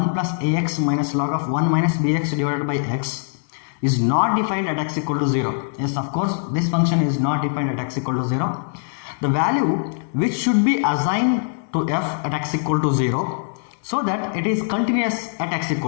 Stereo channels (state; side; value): silent; right; 63 dB below the other